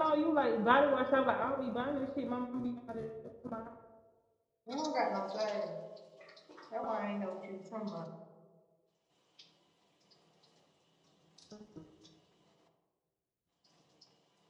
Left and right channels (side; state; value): both; identical; correlation 1.00